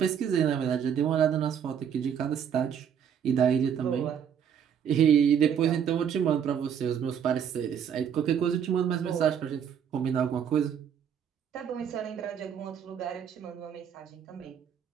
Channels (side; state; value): left; quieter; 8.3 dB